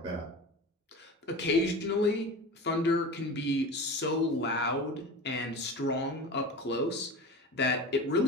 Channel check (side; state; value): both; normal; correlation 0.32